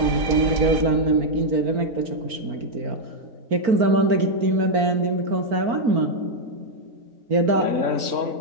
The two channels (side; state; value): left; late; 4.4 ms